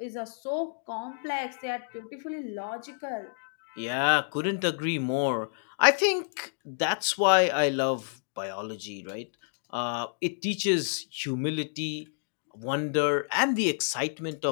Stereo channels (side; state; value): right; silent; digital silence